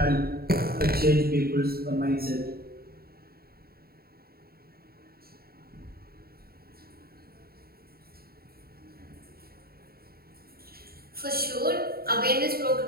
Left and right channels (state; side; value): late; left; 0.44 ms